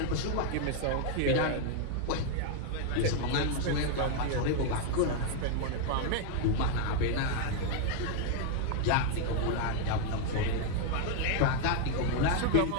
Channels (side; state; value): both; different; correlation 0.00